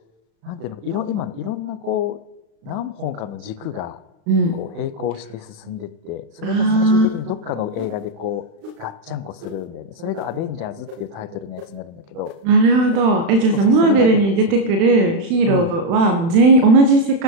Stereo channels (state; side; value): late; left; 36 ms